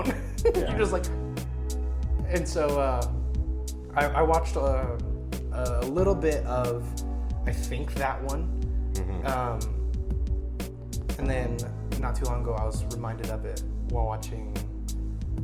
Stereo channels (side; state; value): both; identical; correlation 1.00